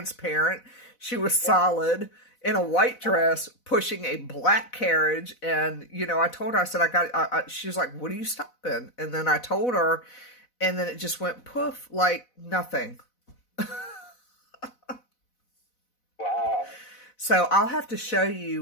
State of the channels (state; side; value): late; right; 4.0 ms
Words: She was solid in a white dress pushing a black carriage. And, you know, I told her, I said, she was like, what are you stopping? And then I told her, and then it just went poof, like nothing. Wow. So I'll have to show